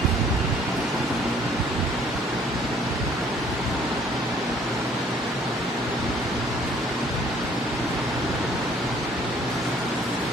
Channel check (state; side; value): normal; both; correlation 0.59